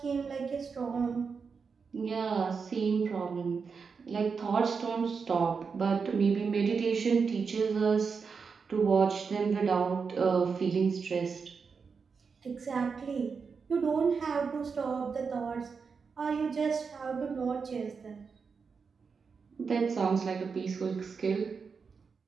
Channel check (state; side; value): quieter; left; 5.4 dB